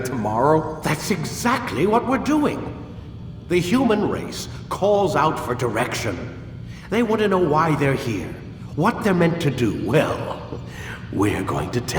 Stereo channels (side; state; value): both; identical; correlation 1.00